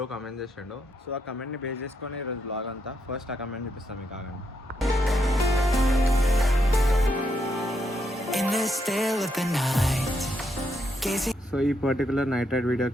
కమెంట్ చేసాడు. సో ఆ కమెంట్ని బేస్ చేసుకొని ఈరోజు వ్లాగ్ అంతా. ఫస్ట్ ఆ కమెంట్ చూపిస్తాం మీకు ఆగండి. సో ఈ పర్టికులర్ నైట్ రైడ్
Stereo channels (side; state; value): both; normal; correlation 0.79